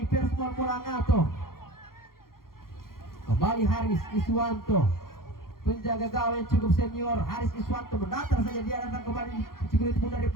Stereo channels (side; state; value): right; late; 0.92 ms